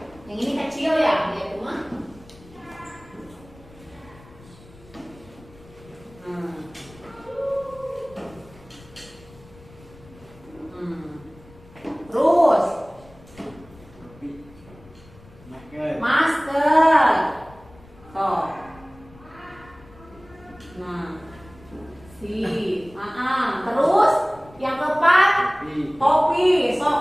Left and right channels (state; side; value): noise; left; rumble, 23 dB below the sound